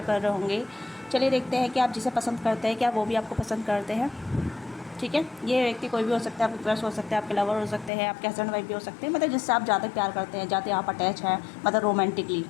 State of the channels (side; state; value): right; drops out; at 7.9 s